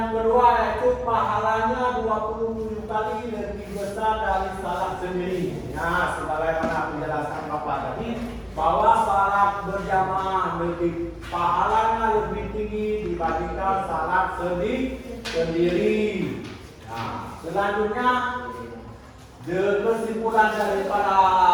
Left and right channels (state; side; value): identical; both; correlation 1.00